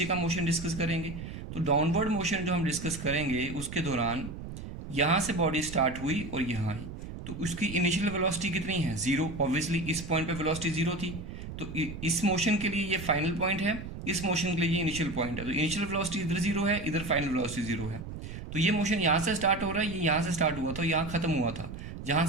का मोशन डिस्कस करेंगे। तो डाउनवर्ड मोशन जो हम डिस्कस करेंगे उसके दौरान यहाँ से बॉडी स्टार्ट हुई और यहाँ आई, तो उसकी इनिशियल वेलोसिटी कितनी है 0, ऑब्वियसली इस पॉइंट पे वेलोसिटी 0 थी, तो इस मोशन के लिए ये फाइनल पॉइंट है, इस मोशन के लिए ये इनिशियल पॉइंट है, तो इनिशियल वेलोसिटी इधर 0 है, इधर फाइनल वेलोसिटी 0 है। तो ये मोशन यहाँ से स्टार्ट हो रहा है, ये यहाँ से स्टार्ट हुआ था, यहाँ खत्म हुआ था, जहाँ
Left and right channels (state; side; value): noise; right; rumble, 10 dB below the sound